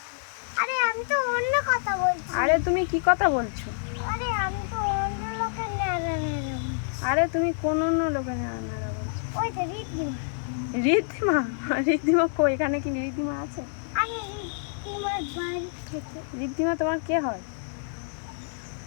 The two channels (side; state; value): right; silent; digital silence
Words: আরে আমি তো অন্য কথা বলছি। আরে তুমি কি কথা বলছো? আরে আমি তো অন্য লোকের নারা নারা। আরে তুমি কোন অন্য লোকের ন্যাড়া ন্যাড়া বলছো? ওই তো রিদ্দিমা। ঋদ্ধিমা? ঋদ্ধিমা কই? এখানে কি ঋদ্ধিমা আছে? আমি রিদ্দিমার বাড়ি থেকে। ঋদ্ধিমা তোমার কে হয়?